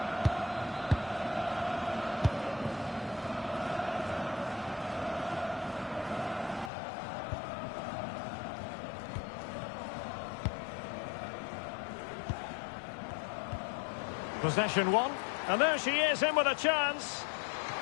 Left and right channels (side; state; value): right; drops out; at 6.7 s